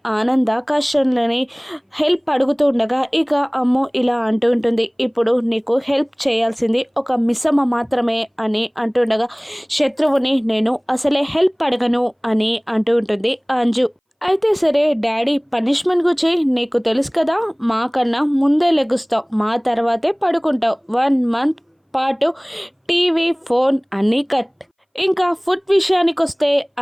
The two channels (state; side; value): identical; both; correlation 1.00